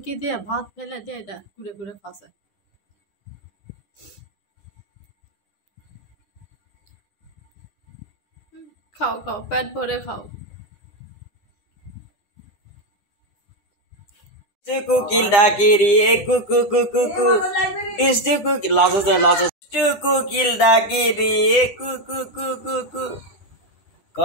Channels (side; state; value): right; late; 9.9 ms